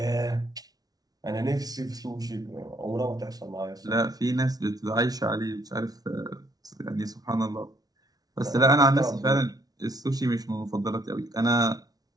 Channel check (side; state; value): left; late; 0.19 ms